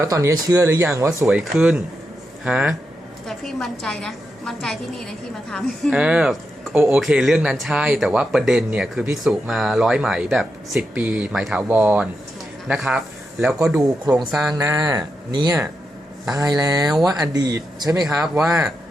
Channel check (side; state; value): both; normal; correlation 0.86